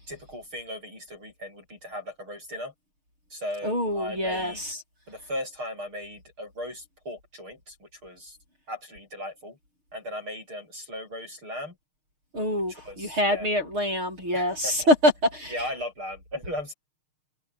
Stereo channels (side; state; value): left; late; 6.5 ms